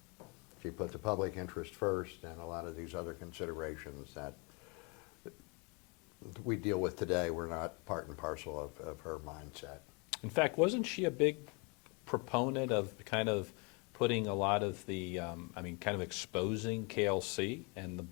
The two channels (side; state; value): right; quieter; 31.7 dB